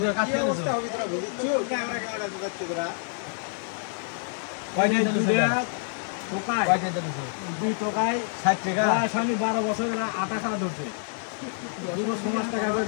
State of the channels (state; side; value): silent; right; digital silence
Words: ঘুরে কাটতে দিছো ক্যামেরা ঢুকাচ্ছে তোরা কয়টা দিছো টোকাই কয়টা দিছো দুই টোকাই 60 টাকা শনি 12 বছর এরা আটা খাওয়া ধরছে যুব সমাজ টাকা করে